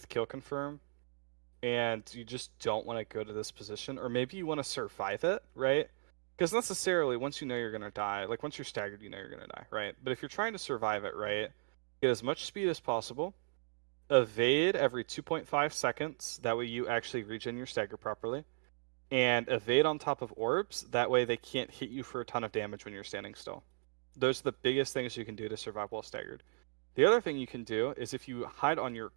kill confirm, and you just don't want to go to this position, or maybe you want to survive it, right? Because necessarily, once you know you're going to die, like once you're staggered, you know you're going to die, right? But if you're trying to survive it, right, get as much speed as possible, evade every 2.5 seconds, that way you actually regen your stagger properly, and evade on top of orbs, that way they can't hit you for a ton of damage when you're standing still. Those are the biggest things you can do to survive while staggered. The other thing you can do is if you hide on your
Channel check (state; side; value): silent; left; digital silence